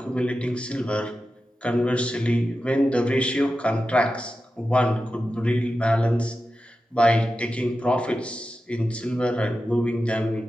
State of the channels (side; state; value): both; normal; correlation 0.92